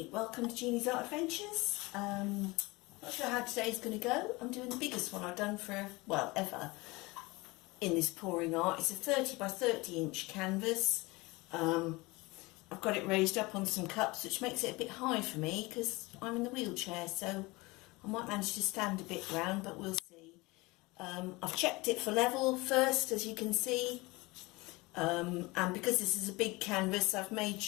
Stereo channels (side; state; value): right; quieter; 23.2 dB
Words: welcome to Jeannie's Art Adventures. Not sure how today's going to go. I'm doing the biggest one I've done for, well, ever in this pouring art. It's a 30 by 30 inch canvas. I've got it raised up on some cups, which makes it a bit high for me because I'm in the wheelchair, so I might manage to stand a bit round, but we'll see. I've checked it for level first, as you can see, and because this is a big canvas, I've made